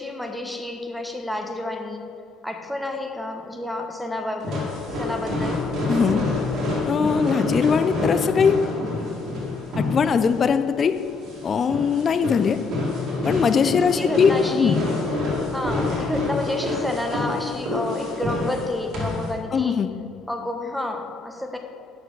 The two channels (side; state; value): right; quieter; 4.1 dB